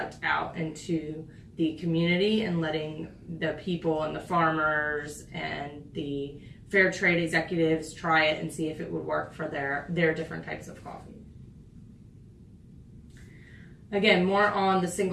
out into the community and letting the people and the farmers and the fair trade executives try it and see if it would work for their different types of coffee. Again, more on the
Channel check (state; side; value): identical; both; correlation 1.00